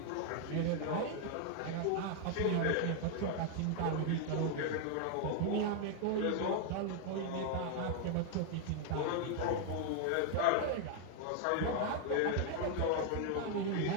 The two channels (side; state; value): both; different; correlation 0.00